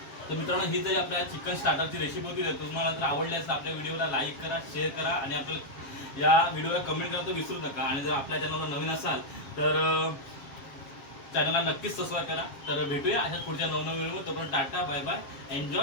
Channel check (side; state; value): right; late; 7.4 ms